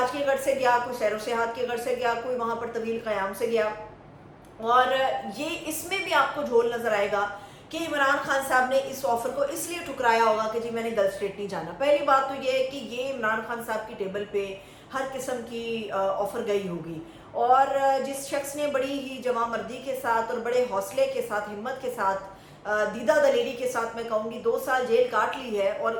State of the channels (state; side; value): identical; both; correlation 1.00